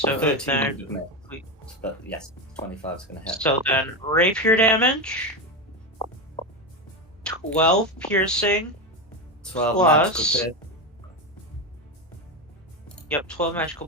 13 then, would have missed. But yes, 25 is going to hit. so then rapier damage, 12 piercing, 12 magical plus. pierce. Yep, 12 magical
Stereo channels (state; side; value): normal; both; correlation 0.15